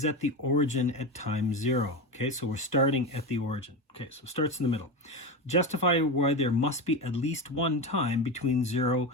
at the origin at time 0. Okay, so we're starting at the origin. Okay, so it starts in the middle. Justify why there must be at least one time between between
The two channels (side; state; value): both; normal; correlation 0.19